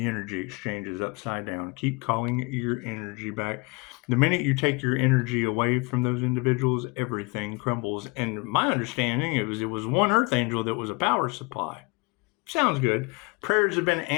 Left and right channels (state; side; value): quieter; right; 28.2 dB